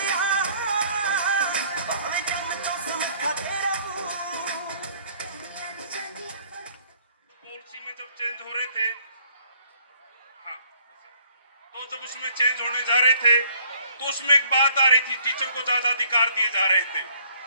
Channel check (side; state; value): both; inverted; correlation -0.61